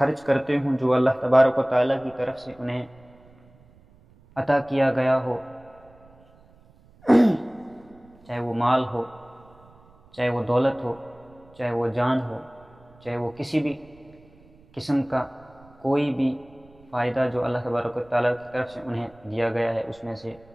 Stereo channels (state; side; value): noise; right; rumble, 28 dB below the sound